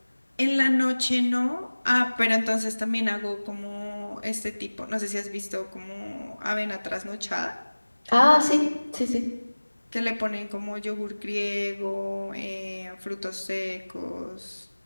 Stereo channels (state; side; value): inverted; both; correlation -1.00